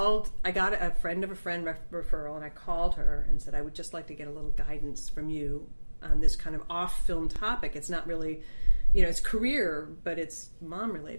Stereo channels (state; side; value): inverted; both; correlation -1.00